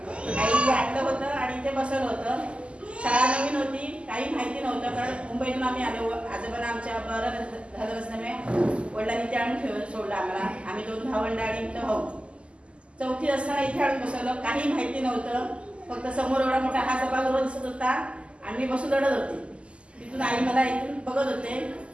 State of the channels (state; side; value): late; left; 0.054 ms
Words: काही आणलं होतं आणि इथे बसवलं होतं. शाळा नवीन होती, काही माहिती नव्हतं, कारण मुंबईतून आम्ही आलो. आजोबांना आमच्या बरं झालं नसल्यामुळे वडिलांनी इथे आणून सोडलं आम्हाला. आम्ही 2 भावंड आणि इथं भाऊ. 4थी असताना इथे आणून बसवलं. काही माहिती नव्हतं, फक्त समोर एवढा मोठा हा सभागृह दिसत होता आणि मी बसून रडत होते. तिथून आई मला इथून बघत होते.